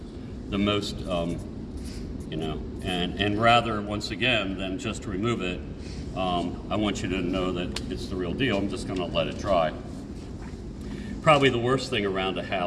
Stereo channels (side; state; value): both; identical; correlation 1.00